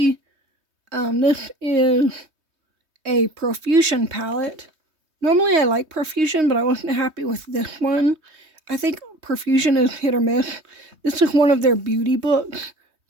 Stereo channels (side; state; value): left; late; 3.2 ms